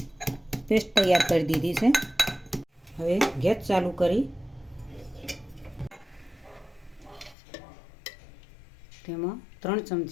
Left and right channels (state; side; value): drops out; right; at 7.4 s